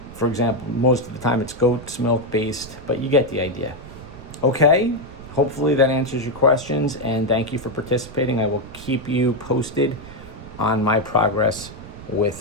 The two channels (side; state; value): right; noise; rumble, 16 dB below the sound